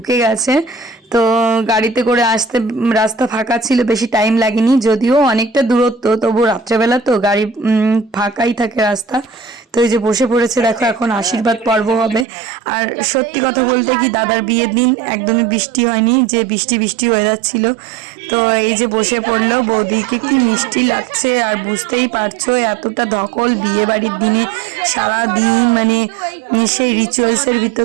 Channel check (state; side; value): drops out; left; at 12.2 s